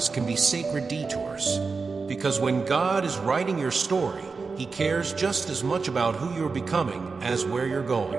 can be sacred detours. Because when God is writing your story, He cares just as much about who you're becoming as where you're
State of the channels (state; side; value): quieter; left; 4.6 dB